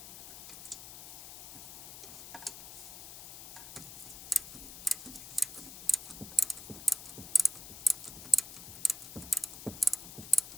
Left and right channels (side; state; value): left; noise; hiss, 11 dB below the sound